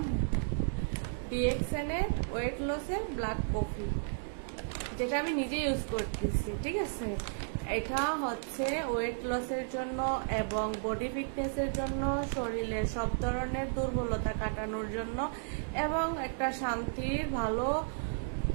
ডিএক্সএন এর ওয়েট লসের ব্ল্যাক কফি, যেটা আমি নিজে ইউজ করতেছি। ঠিক আছে, এটা হচ্ছে ওয়েট লসের জন্য এবং বডি ফিটনেসের জন্য, শরীরের সব ধরনের দুর্বলতা কাটানোর জন্য এবং একটা শান্তির ভালো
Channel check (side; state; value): left; silent; digital silence